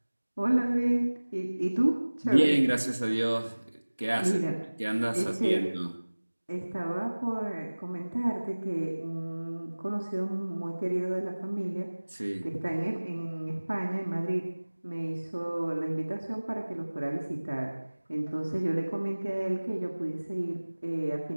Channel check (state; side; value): inverted; both; correlation -1.00